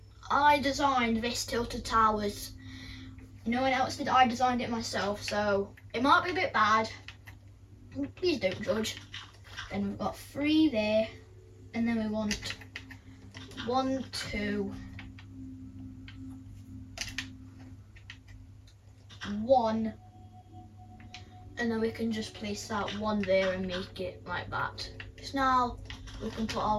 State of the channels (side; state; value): both; identical; correlation 1.00